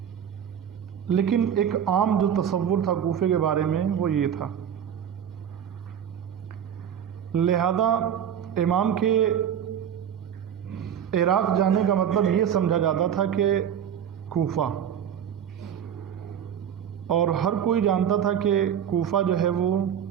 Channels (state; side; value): quieter; left; 8.9 dB